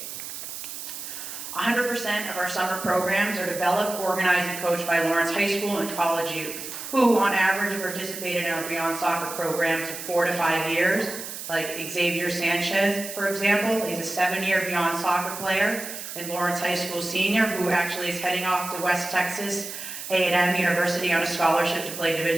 100% of our summer programs are developed, organized, and coached by Lawrence High School and college youth, who on average have participated in our Beyond Soccer programs for 4 to 5 years, like Xavier Sanchez, for example. He's a 7-year Beyond Soccer player and Lawrence High School senior who actually is heading off to West Texas A&M University on a scholarship to play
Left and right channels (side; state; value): right; noise; hiss, 9 dB below the sound